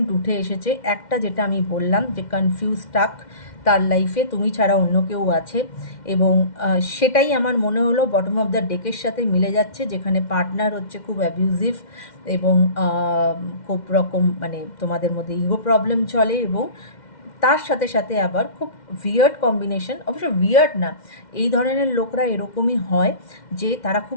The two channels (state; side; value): late; right; 2.1 ms